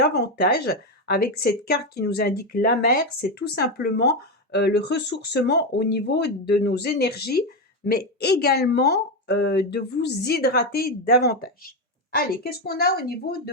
avec cette carte qui nous indique la mer. C'est tout simplement le ressourcement au niveau de nos énergies, mais également de vous hydrater davantage. Allez, qu'est-ce qu'on a au niveau de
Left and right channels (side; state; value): both; normal; correlation 0.10